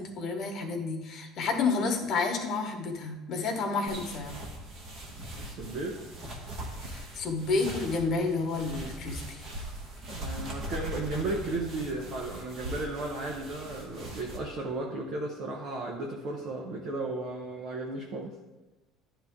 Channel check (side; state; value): both; normal; correlation 0.44